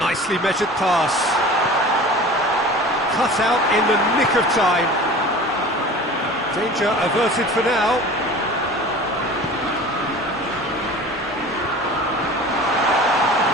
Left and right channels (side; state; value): both; normal; correlation 0.39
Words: Nicely measured pass. Cut out in the nick of time. Danger averted for now.